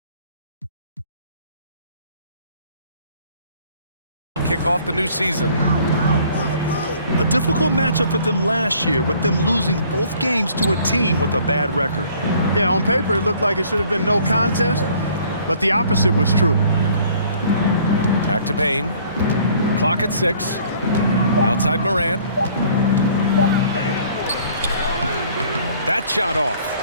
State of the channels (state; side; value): inverted; both; correlation -0.57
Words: kick off the new season. A difficult matchup for them last year, with them losing both games to a team with a bad record. Yeah, on paper it looked like it should have been no contest, but the opposite was true. Back to Payne. Clock at 6. Outside Morant. That shot off.